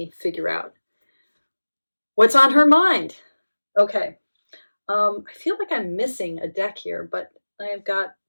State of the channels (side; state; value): both; inverted; correlation -1.00